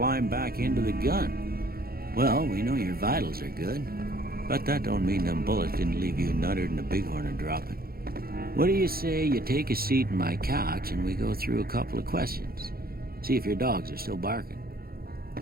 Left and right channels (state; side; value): late; left; 0.44 ms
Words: back into the gun. Well, we know your vitals are good, but that don't mean them bullets didn't leave you nuttered and a bighorn and dropping. What do you say you take a seat in my couch and we go through a couple of questions? See if your dogs are still barking.